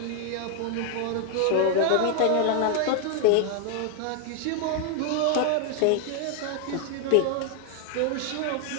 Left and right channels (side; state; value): both; different; correlation 0.00